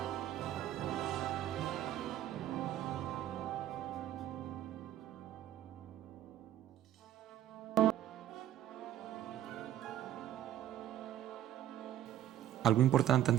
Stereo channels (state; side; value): quieter; left; 11.6 dB